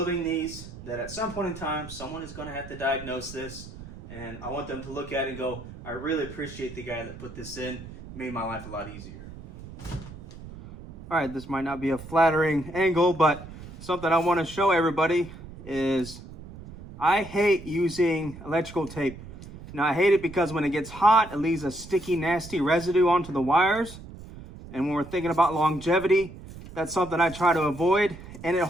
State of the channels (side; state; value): right; noise; rumble, 15 dB below the sound